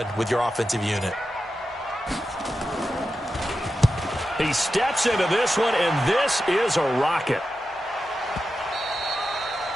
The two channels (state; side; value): normal; both; correlation 0.90